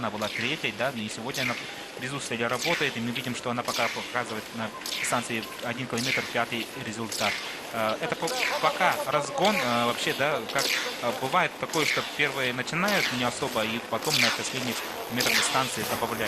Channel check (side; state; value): both; identical; correlation 1.00